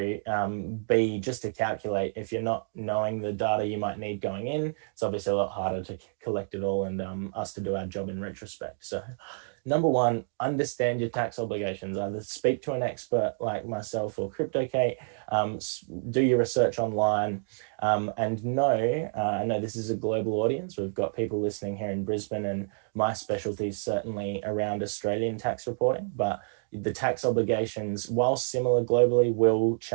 B, just to calculate. If you're not knowing the data you might need going in, it's obviously a lot harder to collect it all and us to do our job in retrospect. So number one, understand your tax obligations. Either speak to an expert like myself or CryptoKate, do your research online, and know, I know this is a global audience. We've got people listening here in Brisbane, and my specialty is certainly around Australian tax reporting, but the tax obligations, while similar globally, will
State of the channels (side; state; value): left; silent; digital silence